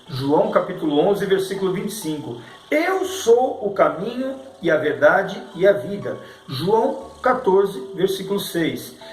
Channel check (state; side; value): identical; both; correlation 1.00